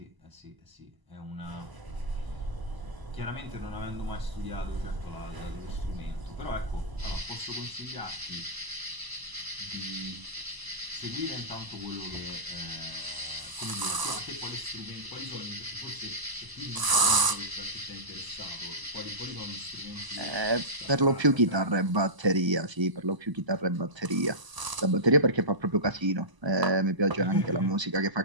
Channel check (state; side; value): late; left; 1.0 ms